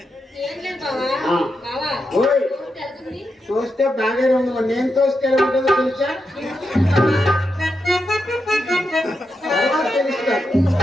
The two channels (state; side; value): normal; both; correlation 0.86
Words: ఏం లేదు బావా. ఆ. బావా, ఓయ్, తోస్తే వెళ్తుంది. తోస్తే బాగానే ఉంది, నేను తోస్తే ఎలా ఉంటుందో తెలుసా? తర్వాత తెలుస్తుంది,